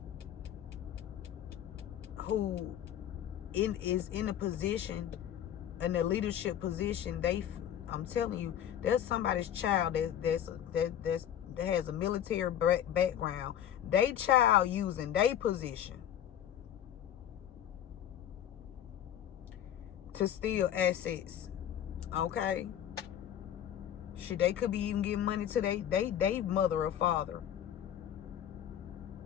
who is in a position, in a leadership position, I'm telling you, there's somebody's child that has a military background. They child using their position to steal assets. Okay, shit, they could be even giving money to they mother or father.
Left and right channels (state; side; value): quieter; right; 10.4 dB